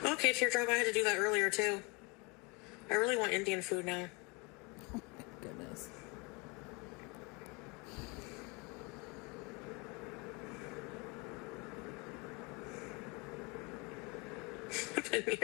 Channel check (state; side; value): quieter; right; 28.7 dB